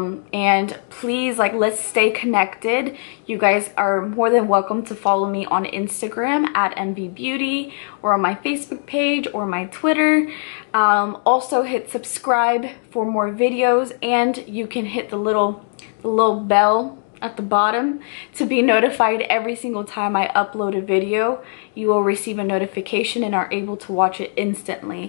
please, like, let's stay connected. You guys are more than welcome to follow me on Instagram at mvbeautyy, or on my Facebook page or my Twitter. Also hit subscribe for more videos, and you can hit the little bell at the bottom to be notified every single time I upload a video. You will receive a notification and are able to watch it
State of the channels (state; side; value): silent; right; 63 dB below the other